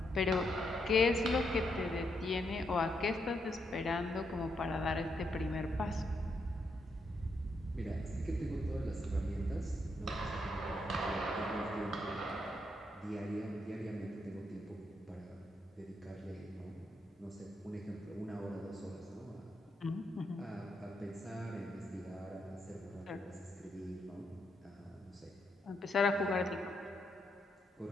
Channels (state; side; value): normal; both; correlation 0.79